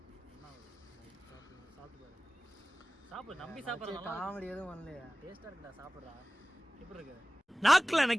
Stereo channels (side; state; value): both; normal; correlation 0.98